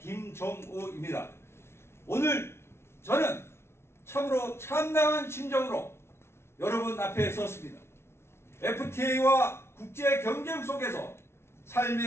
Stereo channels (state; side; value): late; right; 0.12 ms